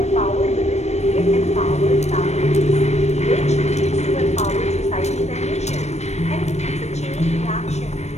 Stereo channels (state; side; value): late; right; 0.32 ms